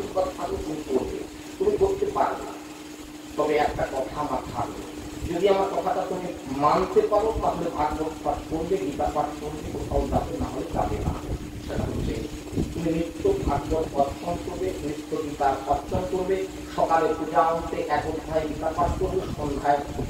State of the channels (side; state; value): both; identical; correlation 1.00